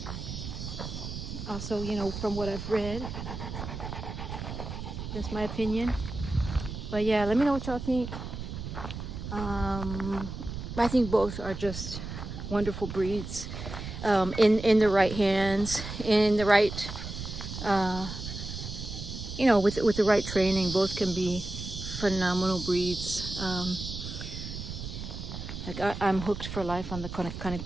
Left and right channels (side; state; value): right; noise; rumble, 8 dB below the sound